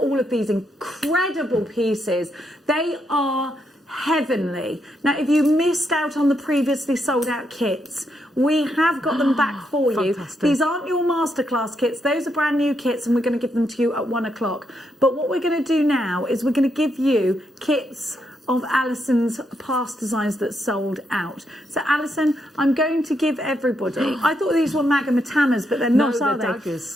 of these incredible pieces. They are heavenly. Now, if you missed out on the previously sold out kits, we have got them back for you. Fantastic. These aren't your masterclass kits. Those are brand new kits, and we're going to give them to you at 1 o'clock. But what we're going to do now is we're going to give you kits of Alison's past designs that sold out. So, Alison, I'm going to give everybody... I thought these were Magamatamas, but they're not, are they?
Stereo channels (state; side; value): normal; both; correlation 0.79